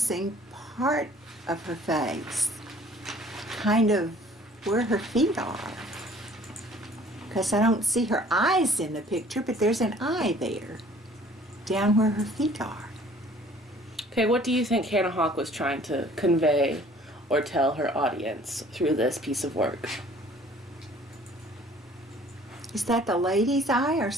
part of her face, kind of where her feet are. Because I don't see her eyes in the picture, but there's an eye there, down where her feet are. Okay, what do you think Hannah Hawk was trying to convey or tell her audience through this piece of work? Is that the lady's eye or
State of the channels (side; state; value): both; normal; correlation 0.54